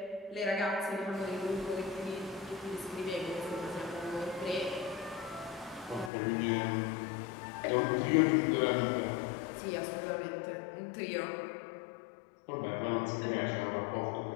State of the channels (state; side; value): drops out; right; at 6.1 s